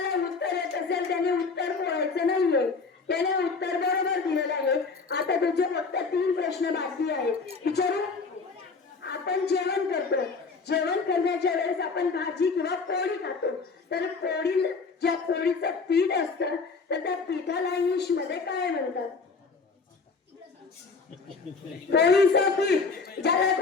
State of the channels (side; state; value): right; quieter; 4.6 dB